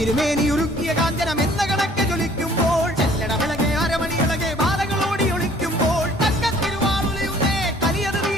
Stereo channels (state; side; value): normal; both; correlation 0.56